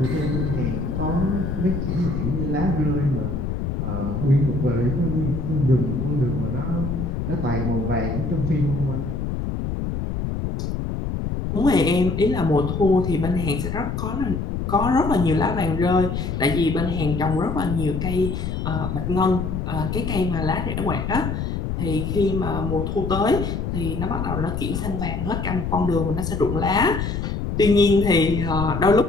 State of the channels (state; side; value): noise; left; rumble, 3 dB below the sound